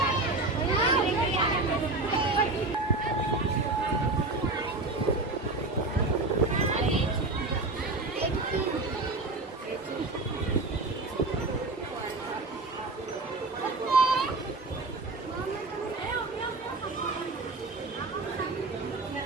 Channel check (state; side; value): quieter; left; 3.2 dB